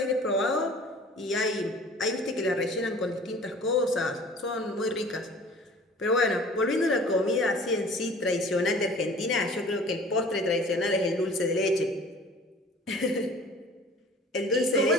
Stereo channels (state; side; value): normal; both; correlation 0.47